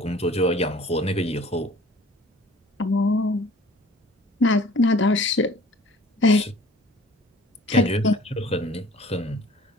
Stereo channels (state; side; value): normal; both; correlation 0.50